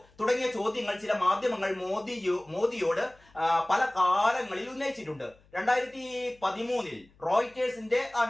തുടങ്ങിയ ചോദ്യങ്ങൾ ചില മാധ്യമങ്ങൾ മോദിയോട് പല കാലങ്ങളിൽ ഉന്നയിച്ചിട്ടുണ്ട്. 2013 റോയിറ്റേഴ്സിന്റെ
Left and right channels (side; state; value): left; noise; hum, 30 dB below the sound